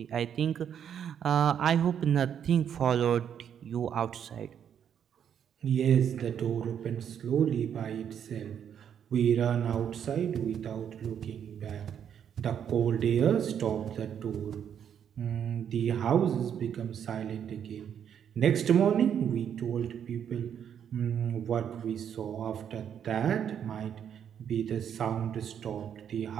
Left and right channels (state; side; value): quieter; left; 8.7 dB